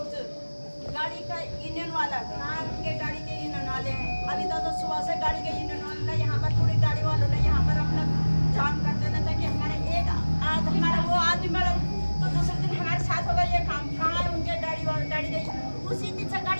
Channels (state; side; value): inverted; both; correlation -1.00